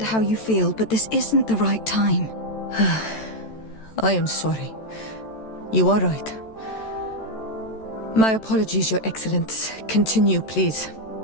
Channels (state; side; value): late; right; 14 ms